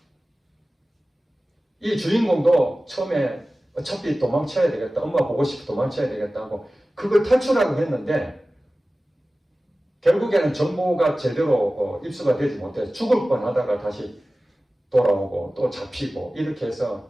이 주인공도 처음에 어차피 도망쳐야 되겠다. 엄마 보고 싶어 도망쳐야 되겠다고 그걸 탈출하고 했는데 결국에는 정보가 제대로 입수가 되지 못해서 죽을 뻔하다가 다시 돌아오고 또 잡히고 이렇게 해서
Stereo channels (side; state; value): both; normal; correlation 0.96